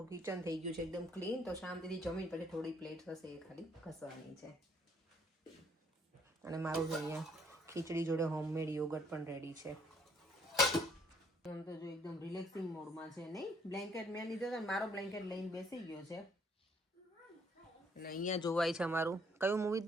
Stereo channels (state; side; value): normal; both; correlation 0.65